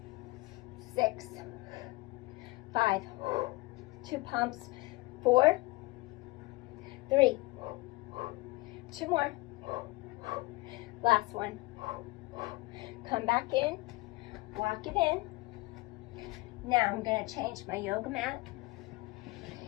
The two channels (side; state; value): right; quieter; 22.4 dB